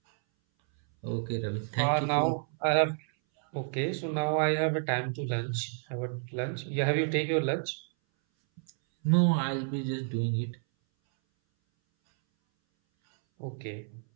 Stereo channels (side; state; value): left; silent; 58 dB below the other